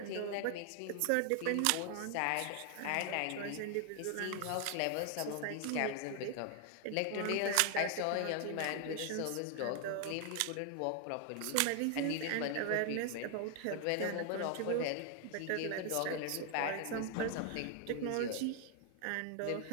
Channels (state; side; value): different; both; correlation 0.00